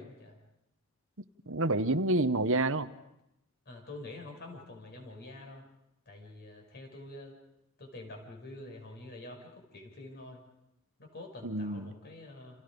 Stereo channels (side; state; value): both; normal; correlation 0.06